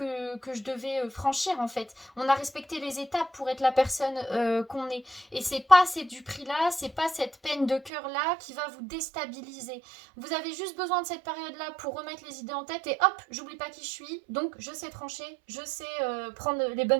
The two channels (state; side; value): drops out; left; at 7.9 s